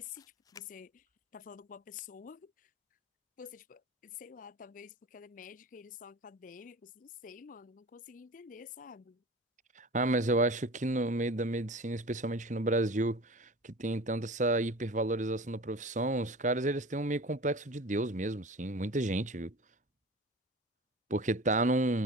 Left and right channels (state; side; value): normal; both; correlation 0.36